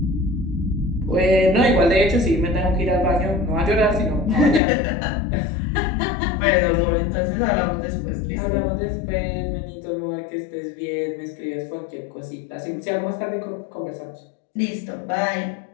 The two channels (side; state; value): right; drops out; at 4.6 s